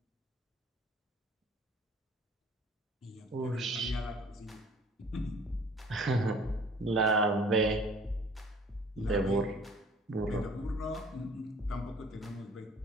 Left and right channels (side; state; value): both; normal; correlation 0.52